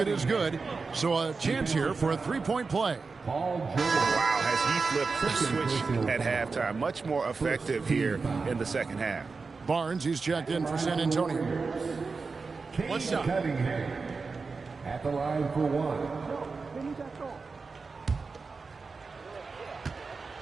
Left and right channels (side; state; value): left; quieter; 4.4 dB